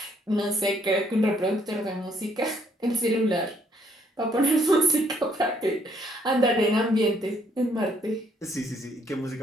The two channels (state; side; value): normal; both; correlation 0.68